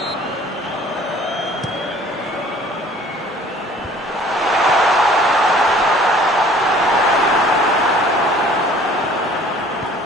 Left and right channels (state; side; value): normal; both; correlation 0.52